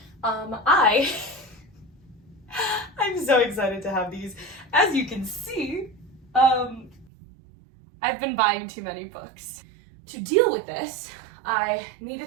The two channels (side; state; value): left; drops out; at 7.1 s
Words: I'm so excited to have these. As you can see, I've been buying too many books. To deal with this, I